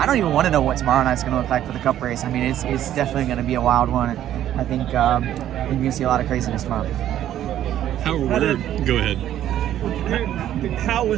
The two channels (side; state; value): left; quieter; 11.7 dB